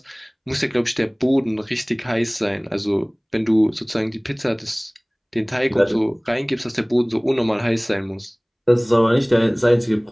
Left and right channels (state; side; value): identical; both; correlation 1.00